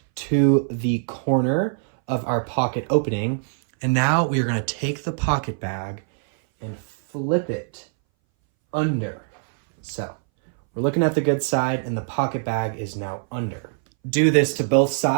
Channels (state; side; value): silent; left; 61 dB below the other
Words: to the corner of our pocket opening, and now we are going to take the pocket bag and flip it under. So we're looking at the good side and the pocket bag is now under. Do this to both